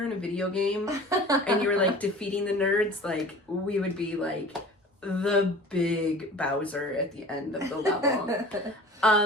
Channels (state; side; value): normal; both; correlation 0.42